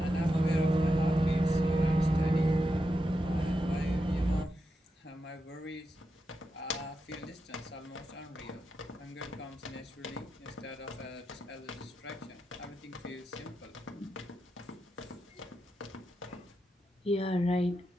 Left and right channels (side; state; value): both; normal; correlation 0.87